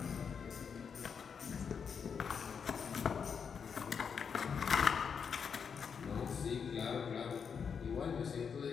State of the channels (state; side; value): quieter; right; 6.5 dB